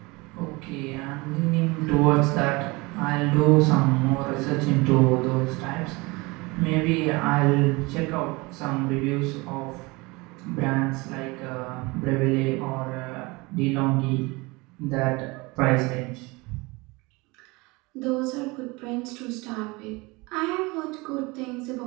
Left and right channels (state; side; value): quieter; left; 24.6 dB